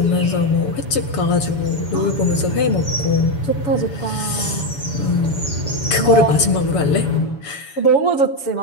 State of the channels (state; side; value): late; right; 7.0 ms